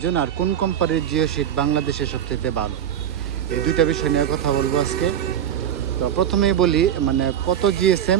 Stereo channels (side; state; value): left; quieter; 9.8 dB